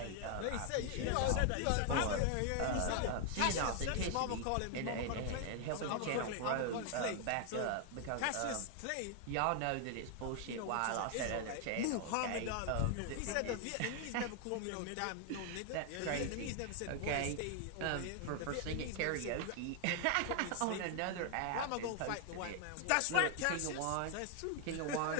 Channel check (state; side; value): different; both; correlation 0.00